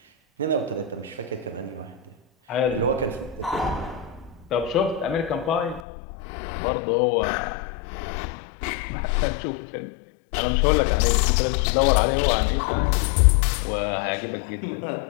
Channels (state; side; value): drops out; right; at 5.8 s